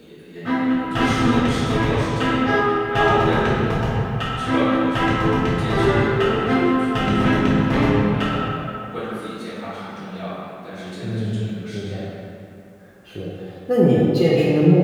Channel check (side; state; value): both; identical; correlation 1.00